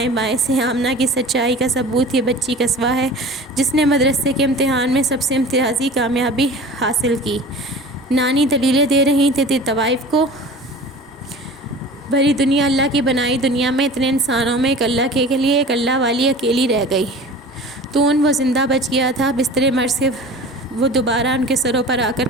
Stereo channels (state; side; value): normal; both; correlation 0.39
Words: بائیں سے۔ آمنہ کی سچائی کا ثبوت یہ بچی قصوہ ہے، جس نے مدرسے کے امتحان میں سب سے امتیازی کامیابی حاصل کی۔ نانی دلیلیں دے رہی تھی طوائف کو۔ بھری دنیا، اللہ کی بنائی دنیا میں اتنے انسانوں میں ایک اللہ کے لیے ایک اللہ والی اکیلی رہ گئی۔ تو وہ زندہ بچ گیا تھا، بستر مرض سے وہ دوبارہ ان کے سروں پر آ کر